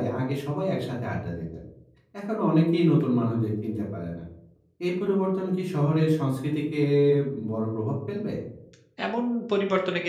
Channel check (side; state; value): both; identical; correlation 1.00